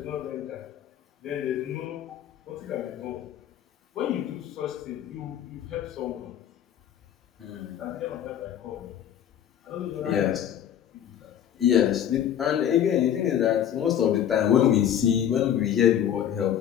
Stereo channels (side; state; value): right; quieter; 10.1 dB